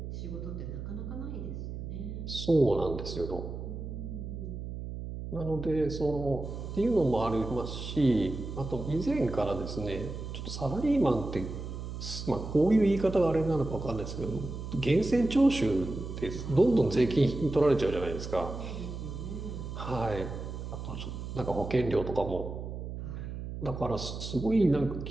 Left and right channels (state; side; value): noise; right; hum, 7 dB below the sound